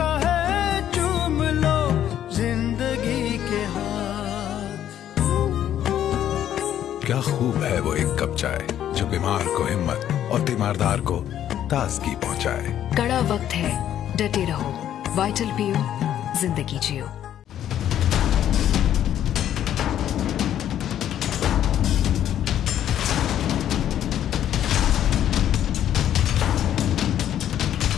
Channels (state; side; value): quieter; right; 10.9 dB